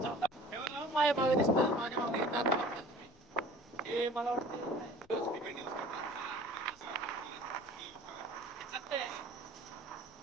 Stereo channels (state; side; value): noise; left; rumble, 27 dB below the sound